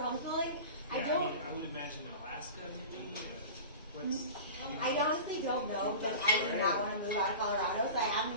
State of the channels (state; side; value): inverted; both; correlation -0.33